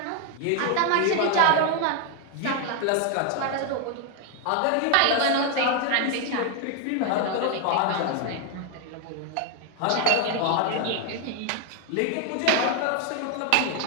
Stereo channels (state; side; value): different; both; correlation 0.01